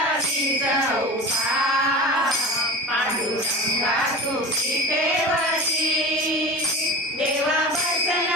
चौपा पांडुरंगा तुझी पेवती देवा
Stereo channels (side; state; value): both; normal; correlation 0.30